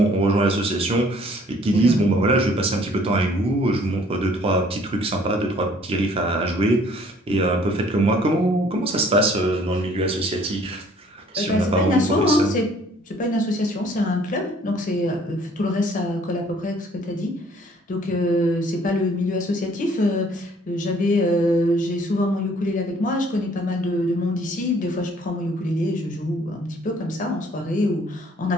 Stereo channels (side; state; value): both; normal; correlation 0.58